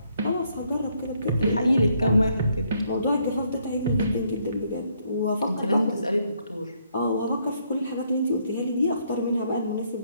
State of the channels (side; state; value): both; inverted; correlation -0.72